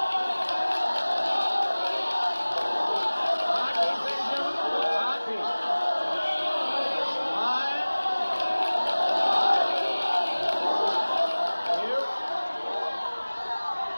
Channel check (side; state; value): both; inverted; correlation -1.00